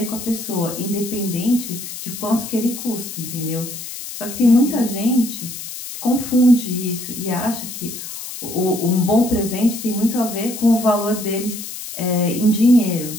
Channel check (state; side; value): noise; left; hiss, 9 dB below the sound